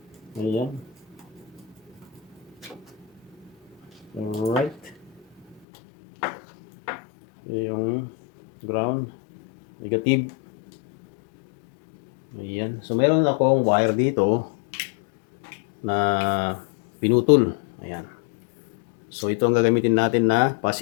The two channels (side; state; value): right; drops out; at 5.6 s